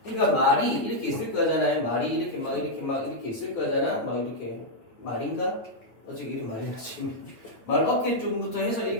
그러니까 말이 이렇게 있을 거잖아요. 말이 이렇게 막 이렇게 있을 거잖아. 막 이렇게 말인가? 어째 이리 많이 나지? 말 어깨 쪽부터 해서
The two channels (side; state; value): right; late; 8.8 ms